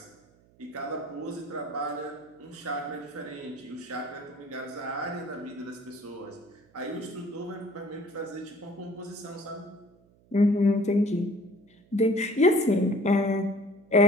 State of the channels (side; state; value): right; noise; hum, 30 dB below the sound